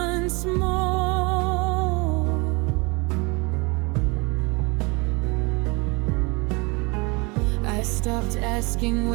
more. I stopped asking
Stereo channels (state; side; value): quieter; left; 28.2 dB